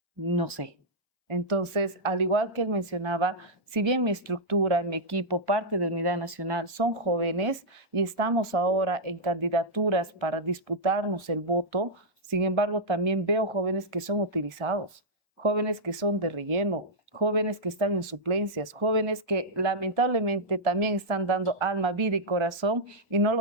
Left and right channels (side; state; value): both; normal; correlation -0.07